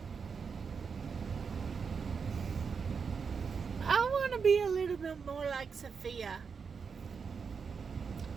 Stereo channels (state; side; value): quieter; left; 5.8 dB